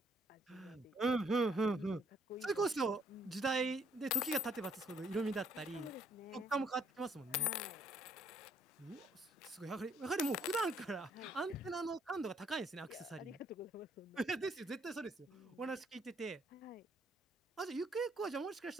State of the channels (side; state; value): both; normal; correlation 0.66